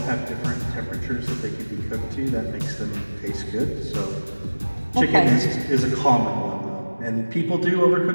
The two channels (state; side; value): inverted; both; correlation -1.00